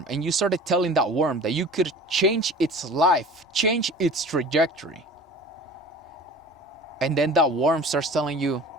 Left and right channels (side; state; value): both; normal; correlation 0.41